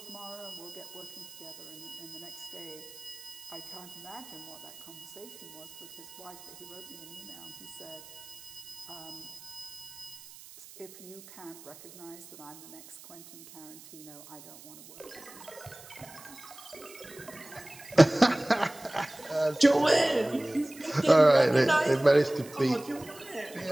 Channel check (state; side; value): noise; right; hiss, 18 dB below the sound